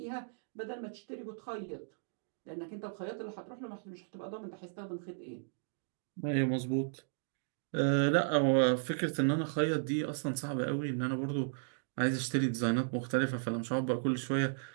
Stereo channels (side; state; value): left; silent; digital silence